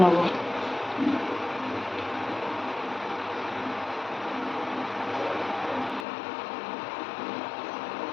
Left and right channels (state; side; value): drops out; right; at 6.1 s